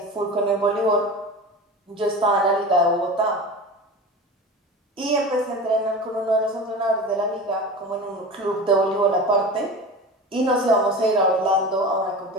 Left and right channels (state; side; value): normal; both; correlation 0.31